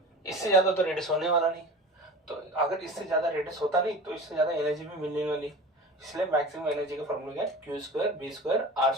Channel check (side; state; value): both; normal; correlation 0.35